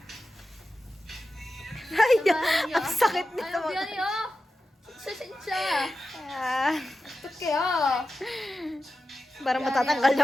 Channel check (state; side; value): normal; both; correlation 0.92